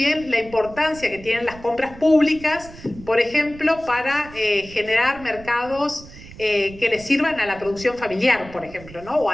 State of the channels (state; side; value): noise; right; rumble, 18 dB below the sound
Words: la importancia que tienen las compras públicas, por ejemplo, para generar mercados que les sirvan a la producción familiar, por ejemplo, ¿no?, o